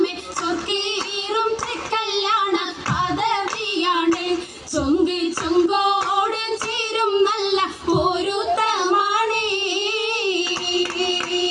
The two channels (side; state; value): both; identical; correlation 1.00